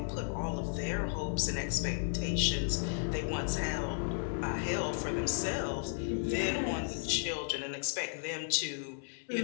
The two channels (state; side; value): silent; right; 55 dB below the other